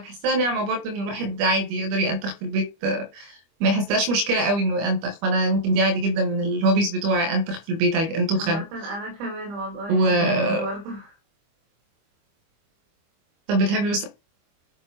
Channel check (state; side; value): late; left; 25 ms